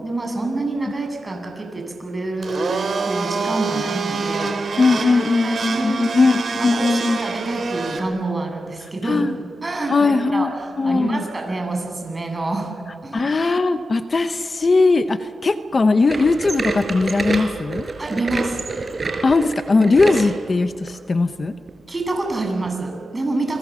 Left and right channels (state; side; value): normal; both; correlation 0.91